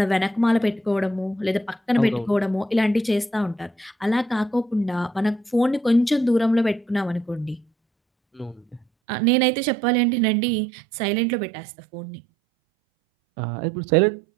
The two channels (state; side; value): drops out; left; at 8.8 s